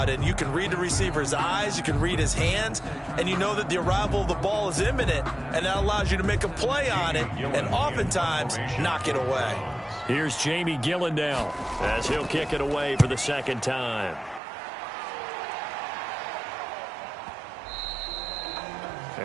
And you can read the receiver's eyes, you can read his hands, and you know that the arrival of the ball is imminent. And that allows you to make a play on it and oftentimes knock it away. Here's Jamie Gillen now as he'll kick it away for the 2nd time.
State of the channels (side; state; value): left; drops out; at 14.4 s